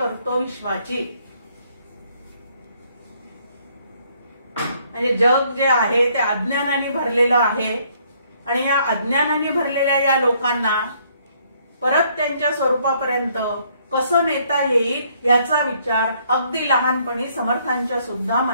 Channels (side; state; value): both; inverted; correlation -0.67